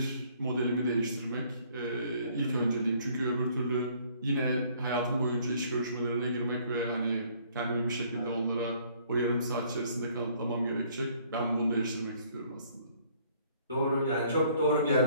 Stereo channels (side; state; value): both; inverted; correlation -0.61